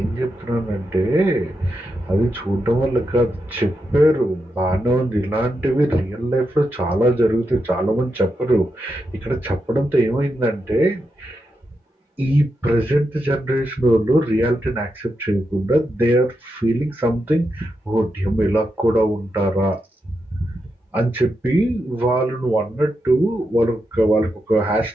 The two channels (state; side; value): normal; both; correlation 0.85